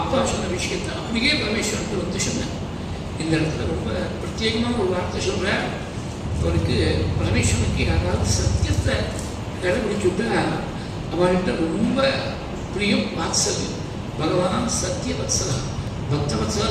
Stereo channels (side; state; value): both; identical; correlation 1.00